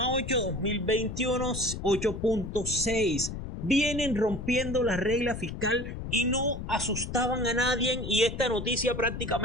2021 8,6. Vienen rompiendo la regla fiscal y no asustaban a nadie, y esta noticia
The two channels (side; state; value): left; noise; rumble, 7 dB below the sound